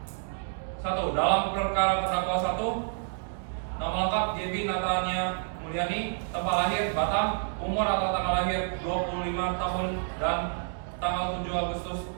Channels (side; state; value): left; silent; digital silence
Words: 1. Dalam perkara terdakwa 1, nama lengkap Gaby Natania Mulyani, tempat lahir Batam, umur atau tanggal lahir 25 tahun dan tanggal 7 Agustus